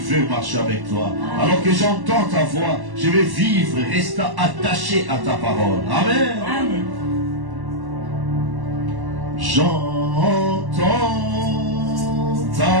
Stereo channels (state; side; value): late; left; 1.1 ms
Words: marcher avec toi. Alors que j'entends ta voix, je vais vivre, rester attaché à ta parole. Amen. Amen. J'entends